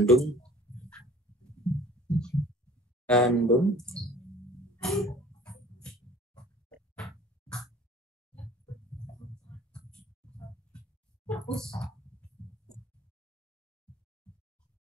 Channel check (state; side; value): normal; both; correlation 0.48